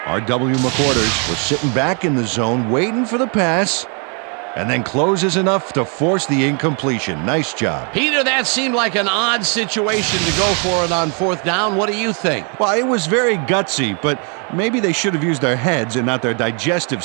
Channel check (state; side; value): quieter; left; 37.9 dB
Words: R.W. McWhorters was sitting back in the zone, waiting for the pass. and then closes enough to force the incompletion. Nice job. Peter, that seemed like an odd situation to go for it on 4th down. What do you think? Well, it was very gutsy, but maybe they should have used their heads and not their digestive